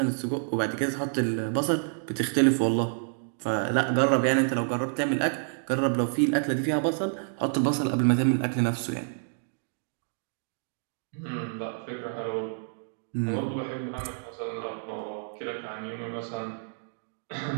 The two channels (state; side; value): silent; left; digital silence